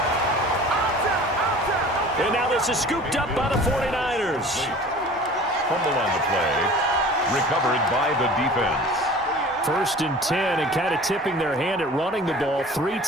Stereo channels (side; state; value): both; normal; correlation 0.43